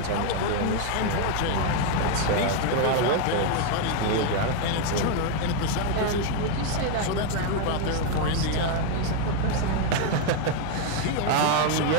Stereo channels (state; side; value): different; both; correlation 0.01